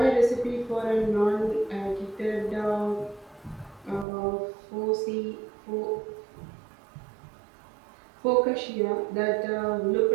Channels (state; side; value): drops out; left; at 4.0 s